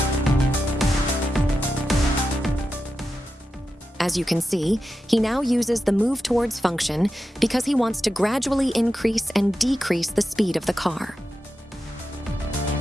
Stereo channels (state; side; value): normal; both; correlation 0.90